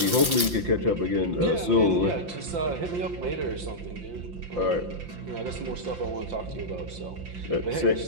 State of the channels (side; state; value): left; late; 5.8 ms